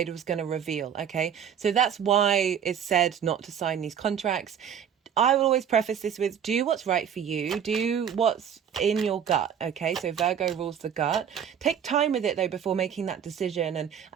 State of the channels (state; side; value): quieter; left; 8.4 dB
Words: was going to reveal. Okay, so that's why it's said not to sign these contracts. I will always preface this with, do what's right for you, do what's in your gut. Okay, so Virgo rules the gut. Take time with it though before making that decision,